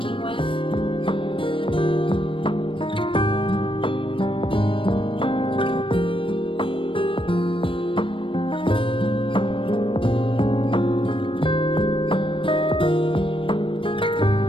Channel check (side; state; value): right; late; 0.25 ms